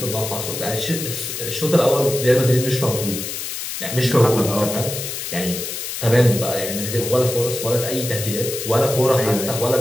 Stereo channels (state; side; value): noise; left; hiss, 6 dB below the sound